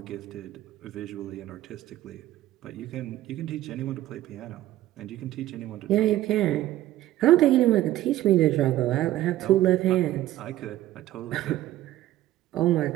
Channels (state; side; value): quieter; left; 14.6 dB